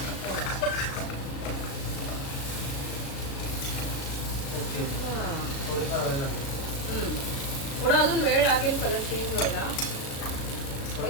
ओके. थोडीफार वेळ लागेल. थोडा अजून वेळ लागेल कलर चेंज व्हायला.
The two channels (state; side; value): late; right; 36 ms